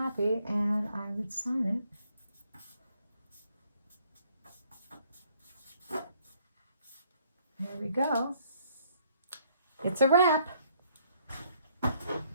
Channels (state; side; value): inverted; both; correlation -0.64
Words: and I would sign it. There we go. It's a wrap.